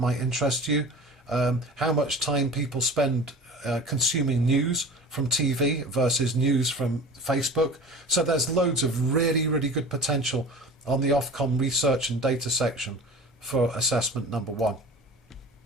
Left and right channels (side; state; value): both; normal; correlation 0.38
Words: might interest you, how much time people spend consuming news from TV versus news from Facebook. So there's loads of really, really good potential on the Ofcom research and data section for assessment #1.